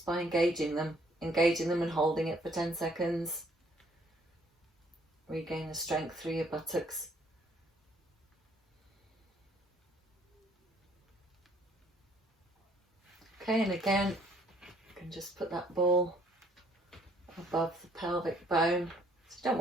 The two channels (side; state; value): both; normal; correlation 0.63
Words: by engaging them and holding it for 10 seconds. Regain the strength through your buttocks. Okay, and again, you can just put that ball above the pelvic bone. So you don't